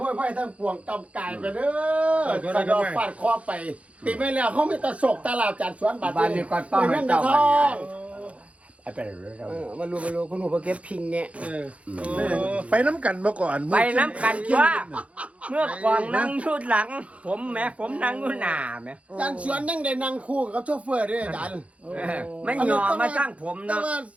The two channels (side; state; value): left; late; 0.064 ms